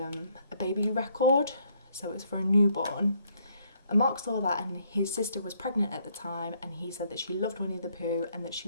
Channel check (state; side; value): inverted; both; correlation -0.68